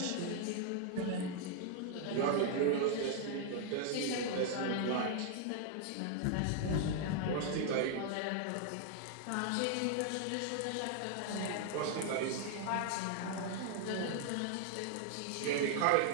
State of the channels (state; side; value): different; both; correlation 0.00